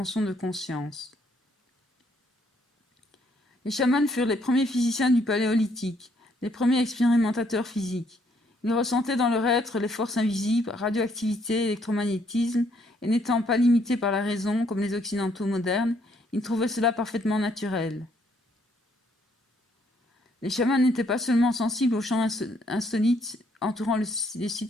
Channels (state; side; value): normal; both; correlation 0.69